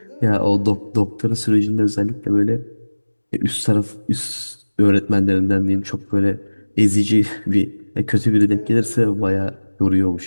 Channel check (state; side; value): inverted; both; correlation -1.00